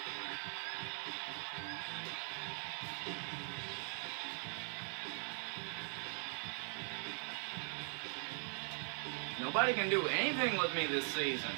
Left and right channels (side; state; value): left; silent; 50 dB below the other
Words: Nobody can do anything with me this season.